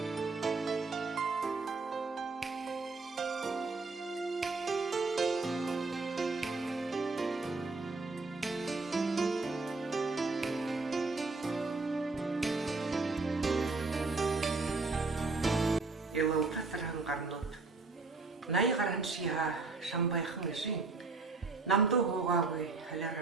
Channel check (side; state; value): left; quieter; 3.8 dB